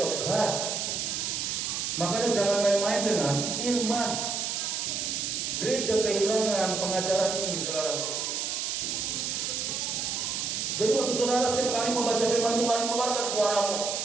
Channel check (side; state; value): right; noise; hiss, 1 dB below the sound